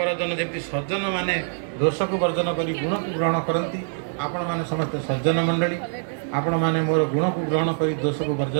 ଯେମିତି ସଜ୍ଜନମାନେ ଦୋଷକୁ ବର୍ଜନ କରି ଗୁଣକୁ ଗ୍ରହଣ କରନ୍ତି, ଆପଣମାନେ ସମସ୍ତେ ସଜ୍ଜନ ମଣ୍ଡଳୀ, ଆପଣମାନେ ମୋର ଗୁଣକୁ ଗ୍ରହଣ କରି ଦୋଷକୁ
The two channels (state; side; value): silent; left; digital silence